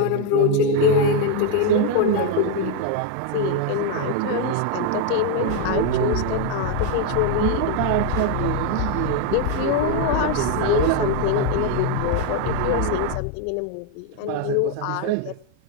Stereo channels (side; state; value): both; different; correlation 0.01